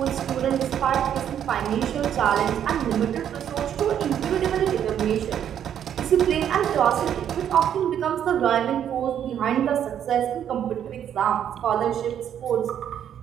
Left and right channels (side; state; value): left; quieter; 9.6 dB